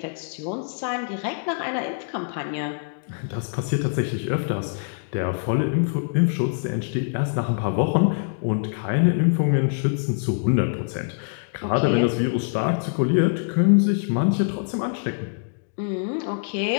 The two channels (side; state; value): right; silent; digital silence